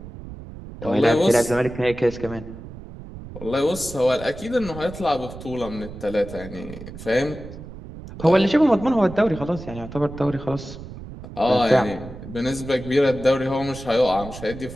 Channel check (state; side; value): noise; right; rumble, 13 dB below the sound